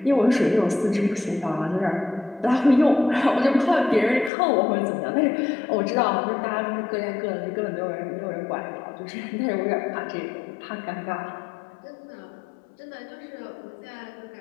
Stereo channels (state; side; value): drops out; right; at 4.3 s